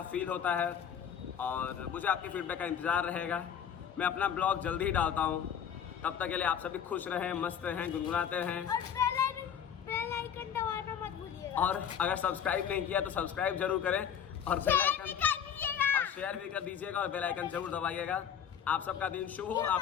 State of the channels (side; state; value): right; quieter; 8.4 dB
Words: फील होता है और मुझे आपके फीडबैक का इंतज़ार रहेगा। मैं अपना ब्लॉग जल्दी ही डालता हूँ, तब तक के लिए आप सभी खुश रहें, मस्त रहें, गुनगुनाते हैं बेल आइकन दबाना मत भूलिएगा। और अगर सब्सक्राइब नहीं किया तो सब्सक्राइब जरूर करें और बेल आइकन और शेयर भी कर दीजिएगा और बेल आइकन जरूर दबाइएगा। आप सबका दिन शुभ हो। आप